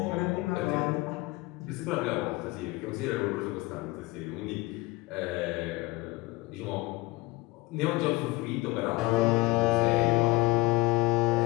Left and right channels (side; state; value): right; quieter; 20.7 dB